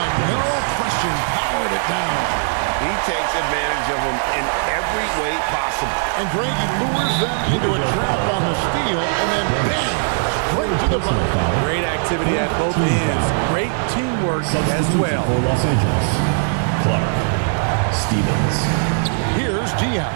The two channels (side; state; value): left; silent; digital silence